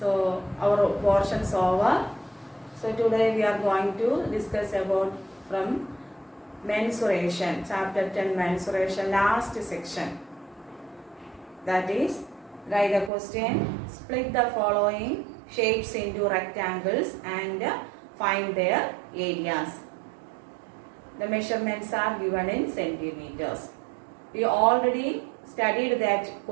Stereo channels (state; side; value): drops out; left; at 13.1 s